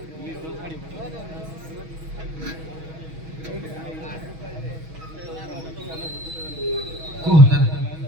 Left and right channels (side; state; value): left; late; 6.3 ms